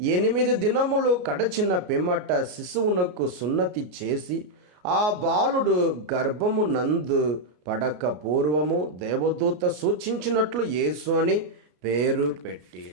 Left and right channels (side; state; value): left; late; 33 ms